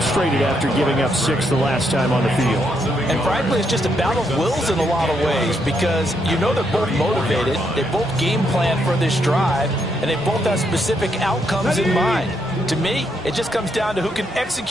after giving up 6 the last time on the field. And frankly, it's just a battle of wills in a lot of ways because you know they're both motivated. They both game plan for this drive, and they both have specific outcomes in mind. To me, it just comes down to who can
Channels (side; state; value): both; normal; correlation 0.77